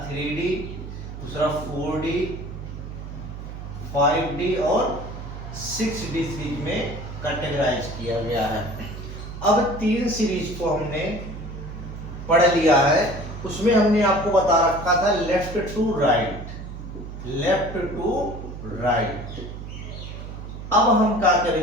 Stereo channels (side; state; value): right; noise; hum, 10 dB below the sound